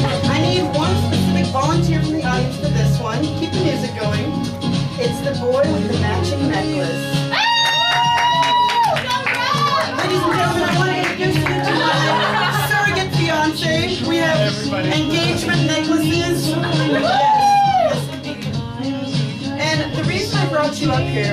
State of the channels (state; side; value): identical; both; correlation 1.00